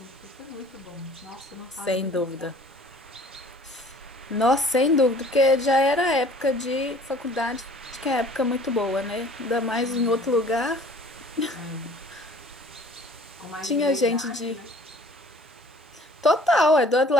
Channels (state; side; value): normal; both; correlation 0.51